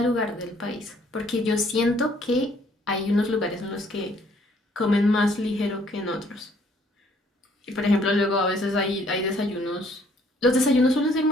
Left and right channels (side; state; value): both; normal; correlation 0.63